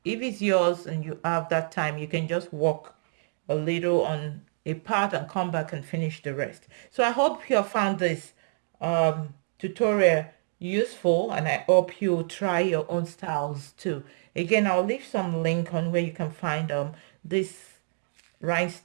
if it's yours and you have that time, you can just work a little on a part and come back and finish the rest. So I hope you have found this tutorial useful and I hope you try your own styles too. Again, I'll leave some link on where you can find these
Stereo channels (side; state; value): left; silent; digital silence